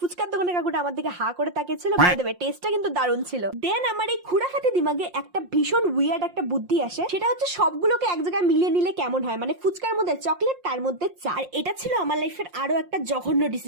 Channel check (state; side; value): late; left; 5.6 ms